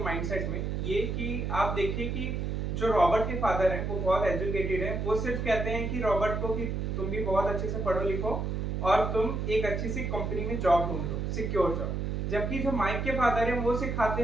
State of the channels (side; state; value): right; noise; hum, 1 dB below the sound